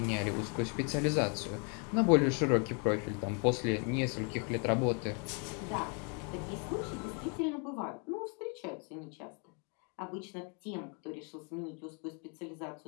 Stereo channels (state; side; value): quieter; right; 36.9 dB